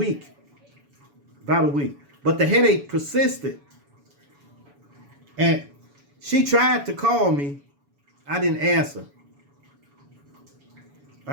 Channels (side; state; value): left; late; 7.0 ms